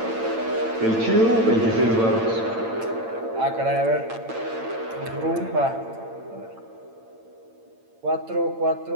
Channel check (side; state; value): left; late; 8.9 ms